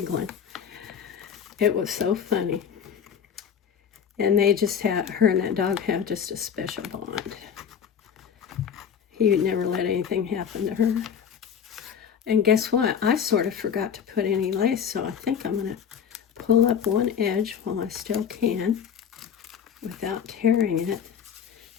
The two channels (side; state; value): right; quieter; 7.7 dB